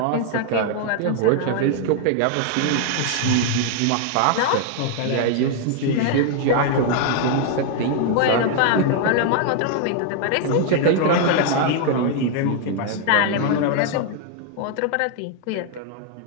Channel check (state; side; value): different; both; correlation 0.00